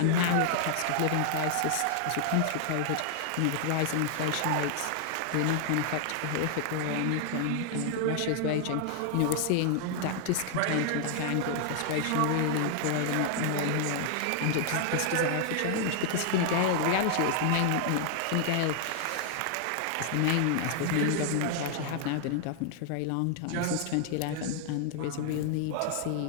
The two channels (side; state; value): both; different; correlation 0.00